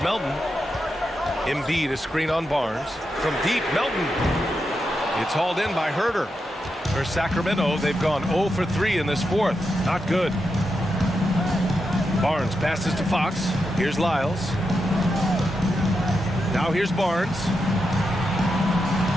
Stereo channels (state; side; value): normal; both; correlation 0.86